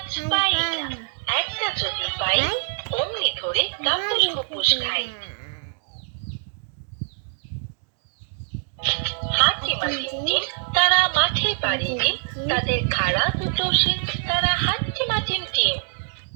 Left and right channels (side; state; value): left; silent; digital silence